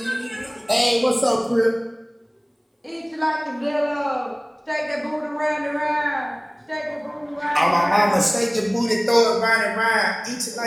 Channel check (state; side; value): identical; both; correlation 1.00